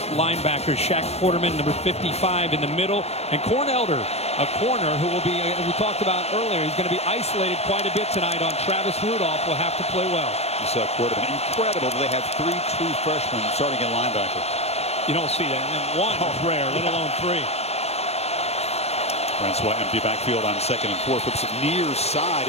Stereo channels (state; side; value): late; right; 0.31 ms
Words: linebackers. Shaq Quarterman, number 55 in the middle, and Corn Elder, a corner who will be, we talked about earlier, he's going to be isolated quite a bit tonight on Travis Rudolph. Will have to play well. You saw Quarterman. Incredible that they have 3 true freshmen starting at linebacker. You don't see that. And 1 is rare, let alone 3. Francois empty backfield on 2nd and 4. Flips it near side.